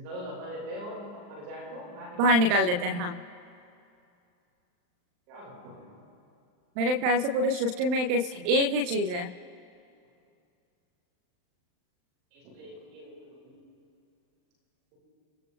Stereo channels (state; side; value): late; left; 39 ms